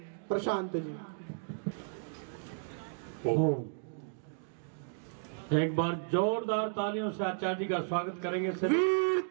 प्रशांत जी। एक बार जोरदार तालियों से आचार्य जी का स्वागत करेंगे। वीर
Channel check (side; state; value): left; silent; digital silence